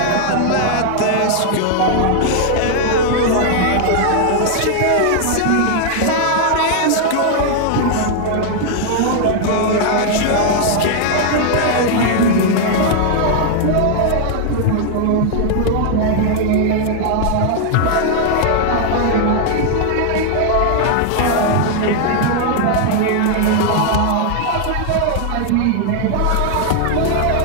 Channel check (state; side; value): different; both; correlation 0.00